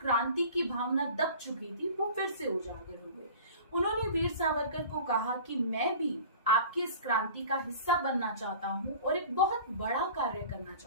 की भावना दब चुकी थी वो फिर से उजागर हो गई। उन्होंने वीर सावरकर को कहा कि मैं भी आपकी इस क्रांति का हिस्सा बनना चाहता हूँ और एक बहुत बड़ा कार्य करना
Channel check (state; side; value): inverted; both; correlation -0.41